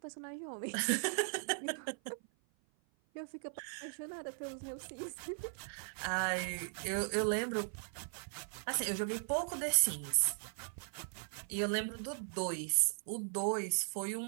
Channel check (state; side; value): silent; left; 52 dB below the other